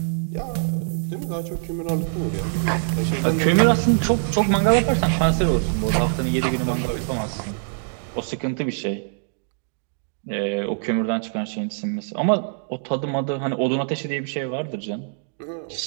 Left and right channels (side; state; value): left; silent; digital silence